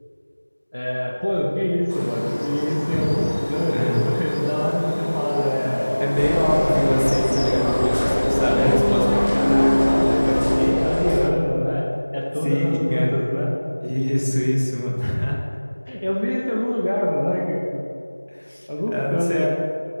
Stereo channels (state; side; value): inverted; both; correlation -1.00